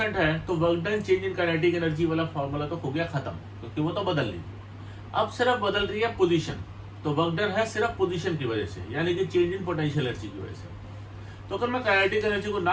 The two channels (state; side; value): identical; both; correlation 1.00